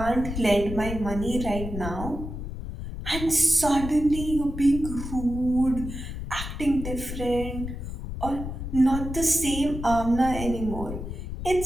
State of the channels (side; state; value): left; noise; rumble, 7 dB below the sound